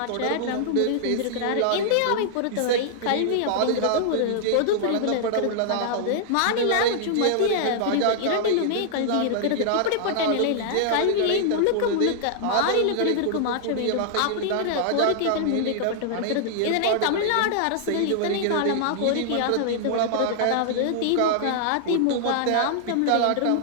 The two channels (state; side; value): different; both; correlation -0.01